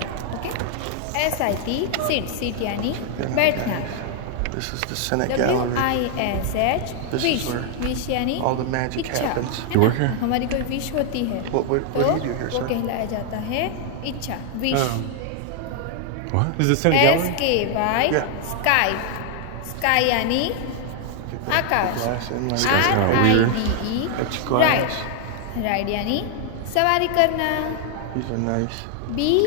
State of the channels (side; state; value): both; different; correlation 0.00